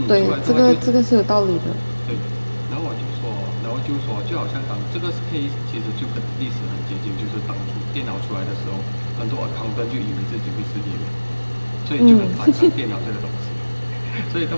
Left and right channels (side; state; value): both; inverted; correlation -1.00